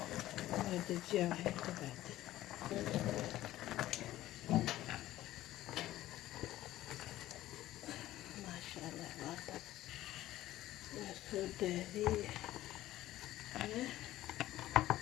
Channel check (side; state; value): right; quieter; 14.9 dB